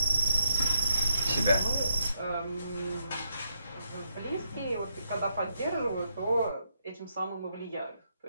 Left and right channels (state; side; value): inverted; both; correlation -0.79